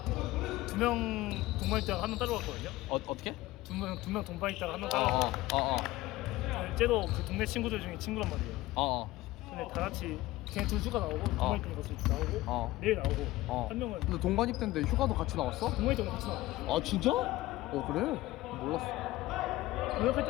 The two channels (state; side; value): quieter; right; 17.9 dB